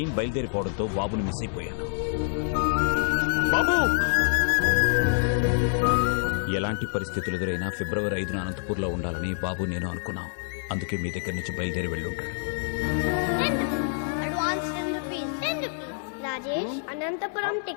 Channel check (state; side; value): silent; right; 60 dB below the other